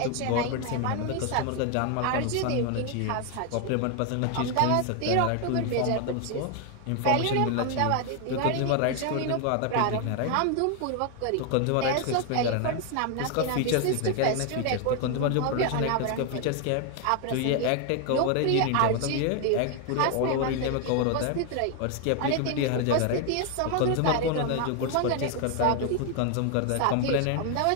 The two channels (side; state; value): both; different; correlation 0.01